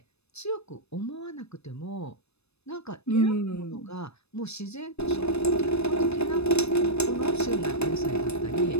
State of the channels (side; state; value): right; late; 0.79 ms